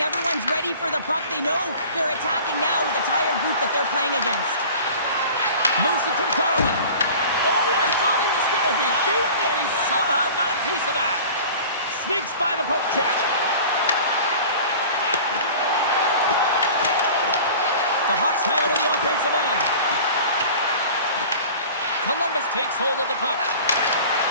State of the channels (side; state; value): both; inverted; correlation -0.41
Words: Everyone's ready for the puck. They know they're attacking now with a tired group that they're playing against. Moves it to Garland. Oh, I thought he was going to be beaten, and he somehow got a piece of that. Sneaks by the poke check. The Hawks have it on the offensive end. Columbus takes hold of the puck.